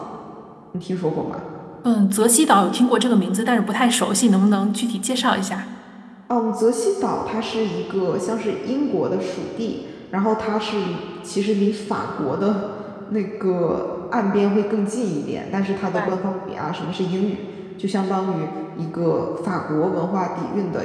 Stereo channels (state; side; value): identical; both; correlation 1.00